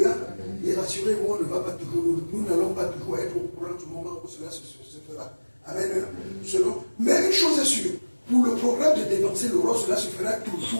Et rassurez-vous, on ne va pas toujours, nous n'allons pas toujours être au courant du moment où cela se fera. Amen. Mais une chose est sûre, pour le programme de dévancer l'aurore, cela se fera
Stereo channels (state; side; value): inverted; both; correlation -1.00